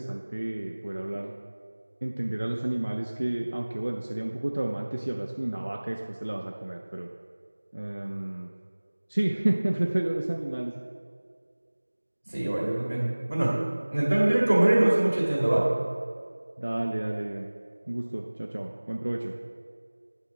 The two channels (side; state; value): both; inverted; correlation -1.00